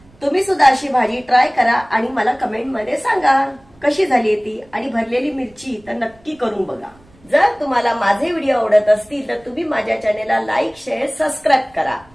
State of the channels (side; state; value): right; noise; rumble, 29 dB below the sound